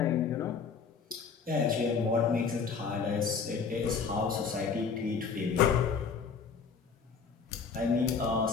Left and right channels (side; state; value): right; quieter; 5.7 dB